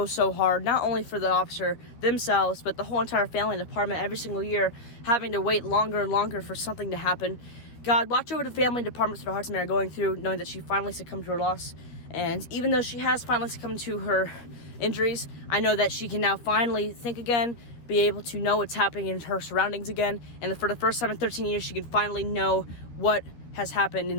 hard, not only for the officer themselves, but the whole entire family and department every single year having to wait longer and longer for something to happen. God, watch over the family and departments that our hearts and are going through, knowing that she finally succumbed to her loss. And even though she has finally succumbed to her injuries, I know that she can now finally think again, be able to know what's happening in her surroundings again, and for the first time in 13 years, she can finally know what has happened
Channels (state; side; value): late; right; 13 ms